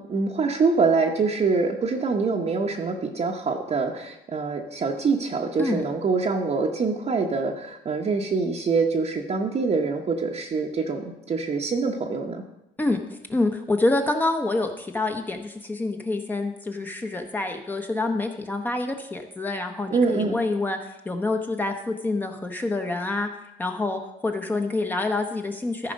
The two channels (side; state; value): both; normal; correlation 0.65